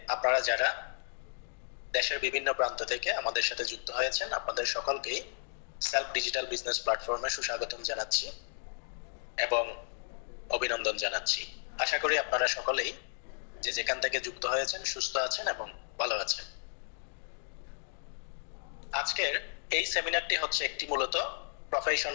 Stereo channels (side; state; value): right; silent; digital silence